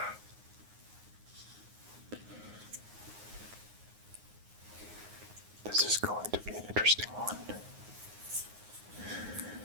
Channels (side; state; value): left; late; 9.6 ms